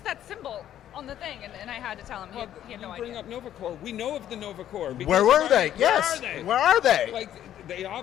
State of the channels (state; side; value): quieter; right; 11.3 dB